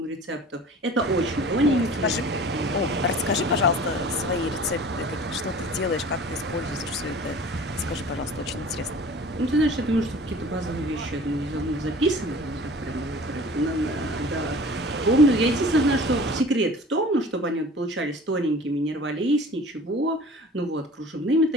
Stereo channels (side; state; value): both; normal; correlation 0.44